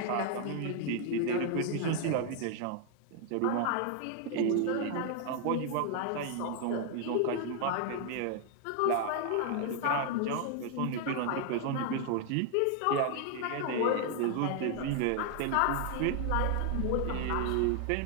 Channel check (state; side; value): different; both; correlation 0.00